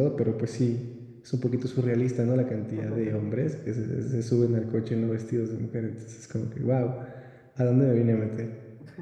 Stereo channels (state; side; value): identical; both; correlation 1.00